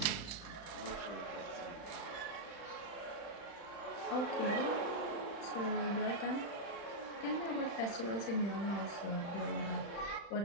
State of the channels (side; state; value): right; late; 35 ms